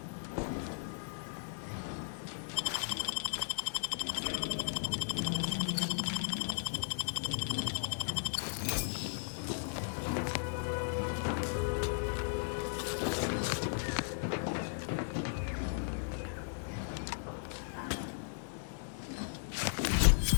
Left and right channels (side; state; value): right; silent; digital silence